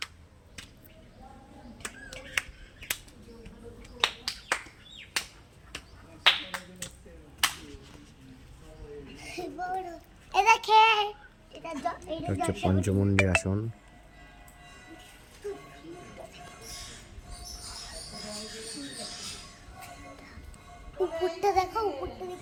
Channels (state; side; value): identical; both; correlation 1.00